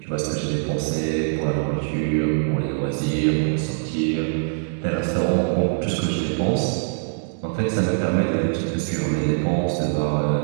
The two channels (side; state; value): left; silent; digital silence